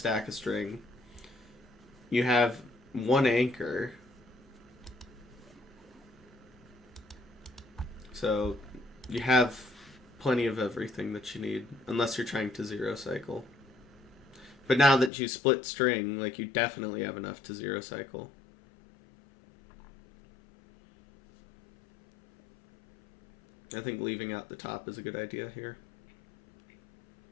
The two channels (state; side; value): drops out; right; at 15.1 s